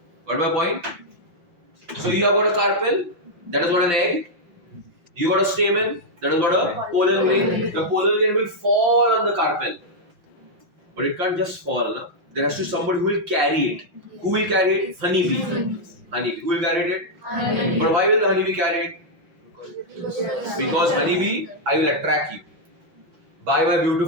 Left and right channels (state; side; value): late; left; 5.7 ms